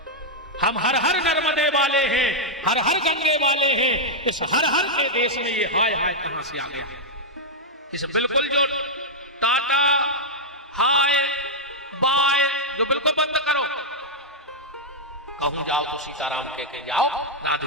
हम हर हर नर्मदे वाले हैं, हर हर गंगे वाले हैं। इस हर हर के देश में ये हाय हाय कहां से आ गया? इस बिल्कुल जो टाटा हाय बाय जो बिल्कुल बंद करो। कहूं जाओ तो सीताराम कह के जाओ,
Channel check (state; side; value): normal; both; correlation -0.05